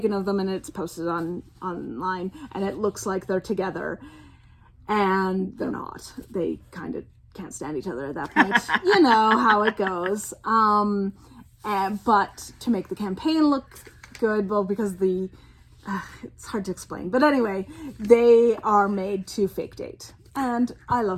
of them and it's posted online and it looks like they're together and they're not. They kind of can't stand each other at that point. You know how it goes. But to make the campaign look good, well, because it's hard to explain. But anyway, they are made to fake date. And I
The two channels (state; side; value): identical; both; correlation 1.00